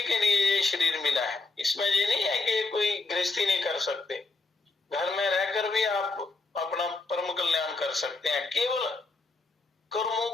के लिए ये शरीर मिला है। इसमें ये नहीं है कि कोई गृहस्थी नहीं कर सकते, घर में रहकर भी आप अपना परम कल्याण कर सकते हैं। केवल कर्मों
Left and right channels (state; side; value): quieter; right; 3.6 dB